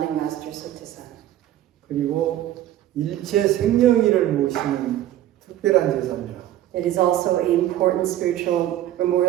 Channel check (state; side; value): quieter; left; 13.0 dB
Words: master Sotaesan. 그리고 일체 생명일을 모시는 특별한 제사입니다. It is also an important spiritual